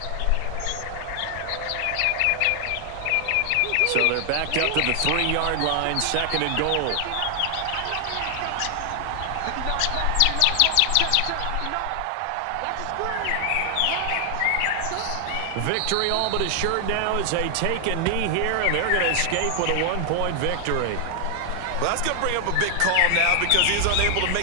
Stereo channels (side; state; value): both; different; correlation 0.00